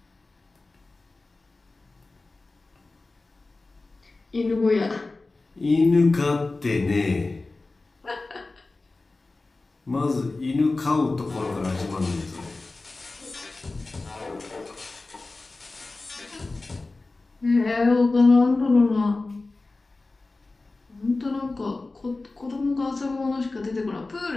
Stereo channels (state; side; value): quieter; right; 3.4 dB